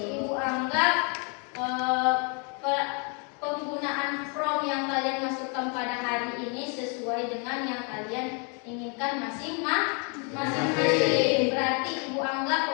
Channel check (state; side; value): quieter; right; 36.4 dB